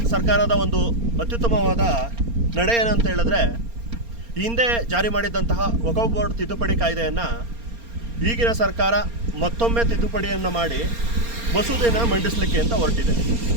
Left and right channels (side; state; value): left; late; 4.3 ms